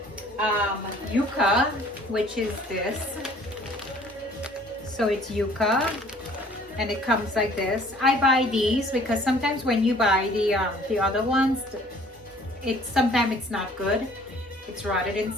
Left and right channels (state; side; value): normal; both; correlation 0.54